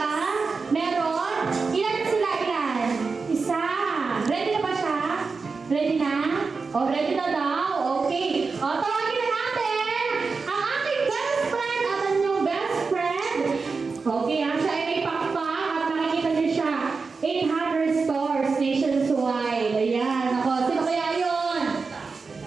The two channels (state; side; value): quieter; left; 4.6 dB